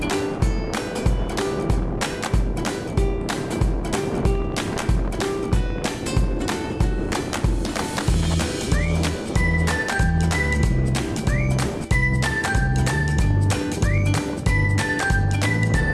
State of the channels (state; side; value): identical; both; correlation 1.00